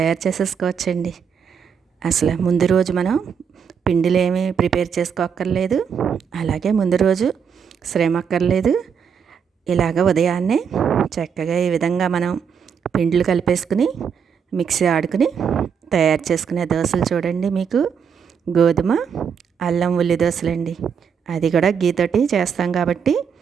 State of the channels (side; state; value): left; quieter; 7.0 dB